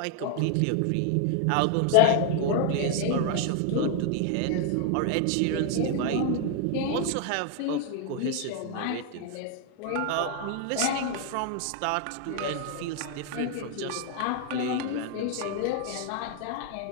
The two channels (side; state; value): both; different; correlation 0.00